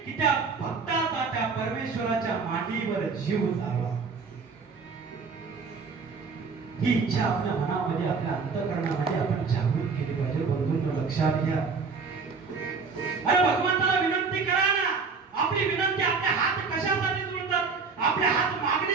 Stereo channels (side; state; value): left; quieter; 4.9 dB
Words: की त्या भक्ताचा त्या परमेश्वराच्या मांडीवर जीव झाला. ही इच्छा आपल्या मनामध्ये आपल्या अंतःकरणामध्ये आपण जागृत केली पाहिजे. बंधूंनो लक्षात घ्या. अरे भगवंताला विनंती करा ना. आपली विनंती आपले हात कशासाठी जोडतात? आपले हात